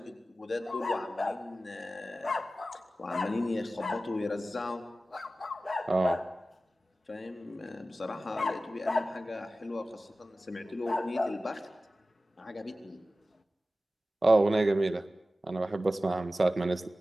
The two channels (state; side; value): normal; both; correlation 0.95